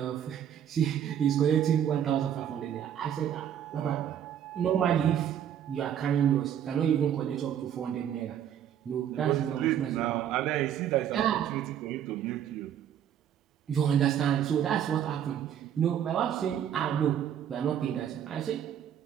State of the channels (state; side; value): quieter; left; 9.7 dB